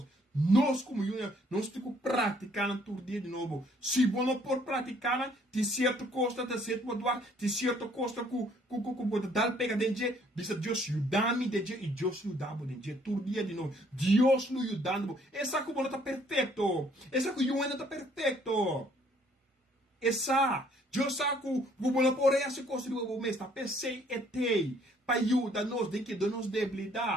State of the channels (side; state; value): both; normal; correlation 0.63